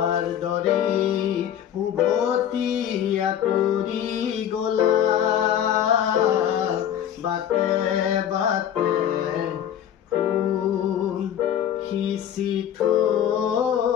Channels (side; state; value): right; quieter; 10.0 dB